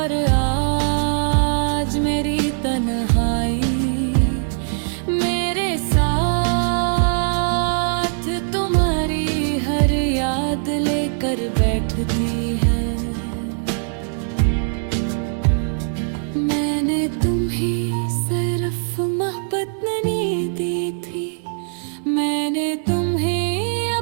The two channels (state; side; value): silent; left; 65 dB below the other